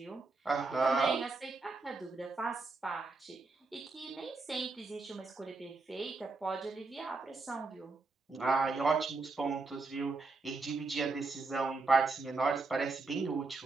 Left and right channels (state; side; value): quieter; left; 3.8 dB